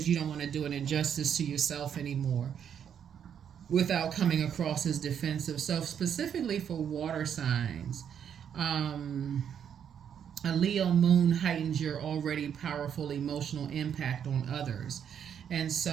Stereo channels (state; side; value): quieter; left; 8.4 dB